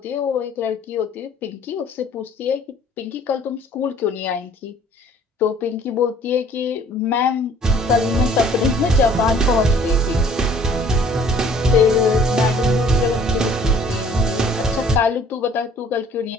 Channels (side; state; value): both; normal; correlation 0.55